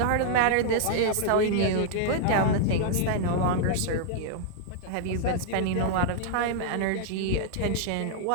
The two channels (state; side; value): different; both; correlation -0.01